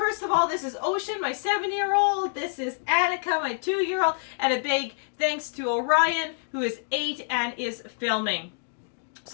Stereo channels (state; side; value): silent; right; 60 dB below the other